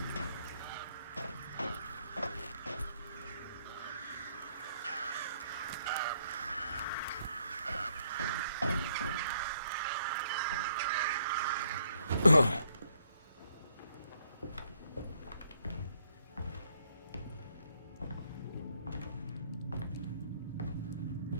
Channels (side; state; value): both; inverted; correlation -0.70